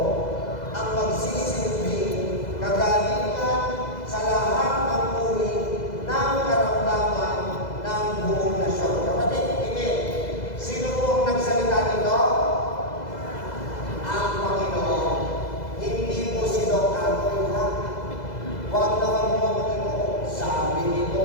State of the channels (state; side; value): late; right; 2.0 ms